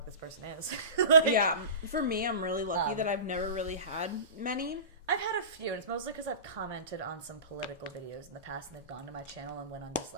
this person is. Yeah, for me, I'm really lucky that I've never really had many. I've had a few, and it's mostly because I've commented on some political videos in the past, and they've gone to my channel and went on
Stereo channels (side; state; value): both; inverted; correlation -0.32